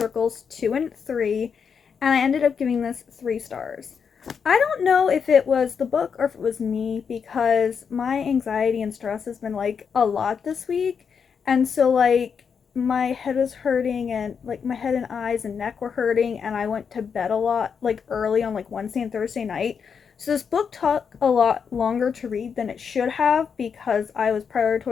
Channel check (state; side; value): quieter; right; 6.5 dB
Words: 2 and 3, and I ended up giving this 3 stars. I don't know if it was the book or if it was me, because my anxiety and stress has been like a lot this week, and so like my head was hurting, and like my head and eyes and neck were hurting, and I went to bed a lot like early on like Wednesday and Thursday night. So this book took a lot longer to read than it should have, because I was